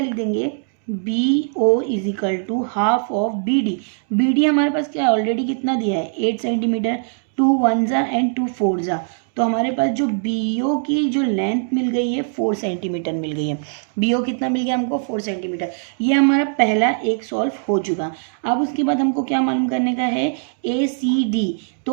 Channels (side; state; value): left; silent; digital silence